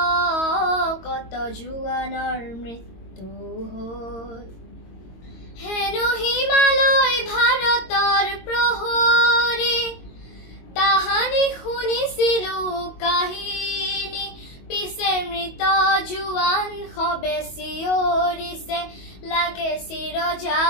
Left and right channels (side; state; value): right; late; 22 ms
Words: কত জোৱানৰ মৃত্যু হ'ল। হেনো হিমালয় ভাৰতৰ প্ৰহৰী, তাহানি শুনিছিলো কাহিনী, পিছে মৃত জোৱান সবে চিঞৰিছে, লাগে চিৰ